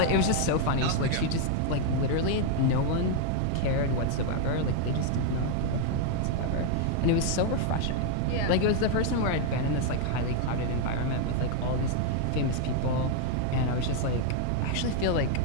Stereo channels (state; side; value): different; both; correlation 0.00